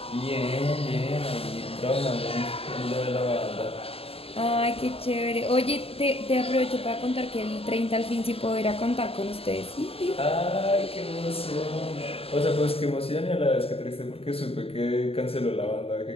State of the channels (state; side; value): late; right; 0.28 ms